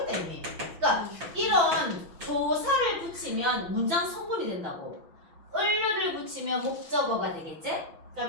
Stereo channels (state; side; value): late; left; 6.0 ms